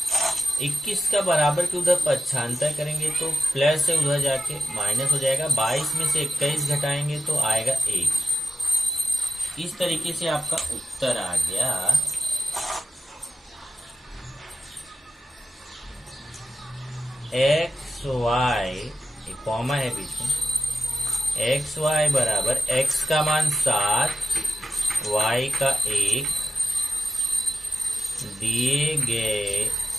21 का बराबर के उधर पक्षांतर करेंगे तो प्लस है, उधर जाके माइनस हो जाएगा। 22 में से 21 घटाएंगे तो आएगा 1। इस तरीके से आपका उत्तर आ गया। एक्स वाई, एक कॉमा है बीच में, एक्स वाई बराबर x का मान 7, y का 1 दिए गए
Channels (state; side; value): normal; both; correlation 0.92